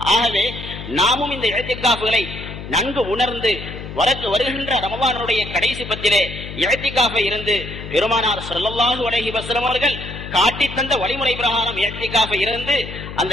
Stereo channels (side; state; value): left; noise; hum, 10 dB below the sound